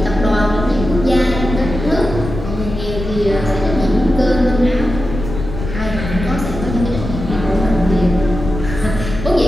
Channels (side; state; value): left; noise; rumble, 7 dB below the sound